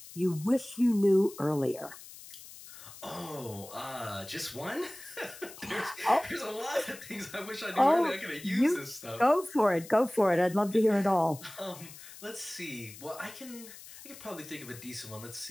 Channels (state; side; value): noise; left; hiss, 16 dB below the sound